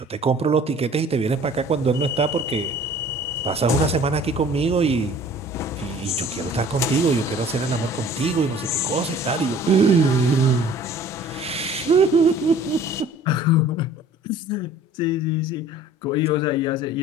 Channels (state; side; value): normal; both; correlation 0.49